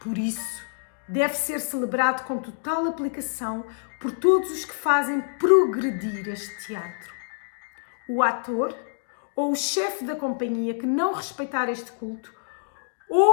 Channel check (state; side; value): silent; right; digital silence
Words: isso, deve ser celebrado com total aplicação por todos os que fazem progredir este teatro. O ator ou o chefe da companhia que não respeitar este culto